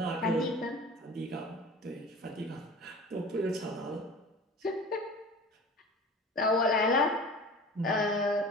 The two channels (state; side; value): normal; both; correlation 0.39